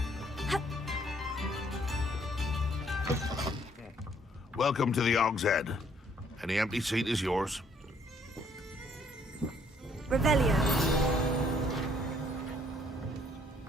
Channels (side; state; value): both; normal; correlation 0.65